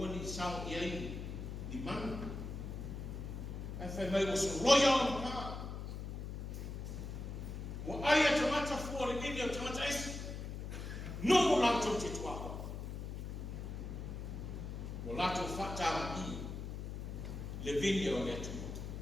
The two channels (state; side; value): noise; left; hum, 6 dB below the sound